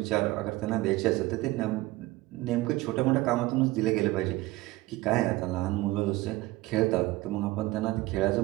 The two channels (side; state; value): left; quieter; 19.1 dB